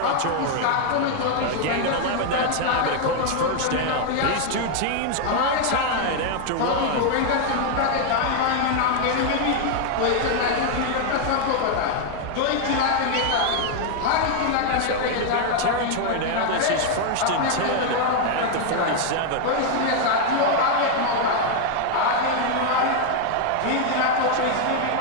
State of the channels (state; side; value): different; both; correlation 0.00